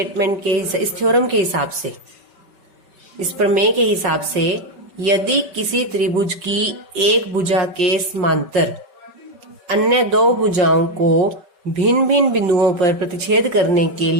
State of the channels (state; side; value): late; left; 5.2 ms